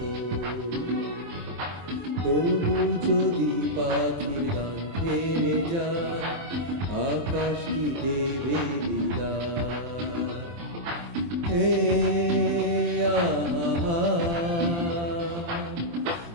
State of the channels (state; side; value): late; left; 23 ms